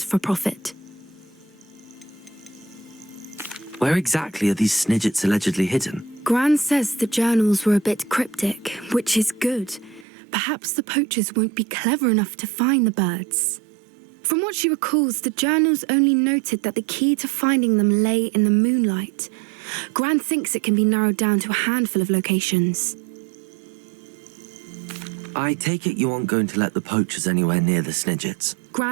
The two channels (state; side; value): drops out; left; at 10.1 s